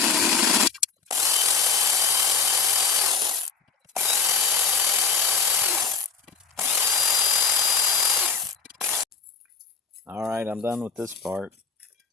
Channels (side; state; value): right; quieter; 5.7 dB